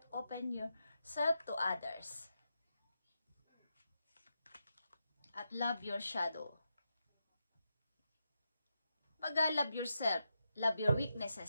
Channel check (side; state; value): both; inverted; correlation -0.87